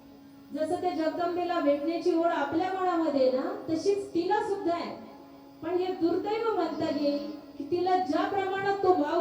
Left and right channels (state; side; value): identical; both; correlation 1.00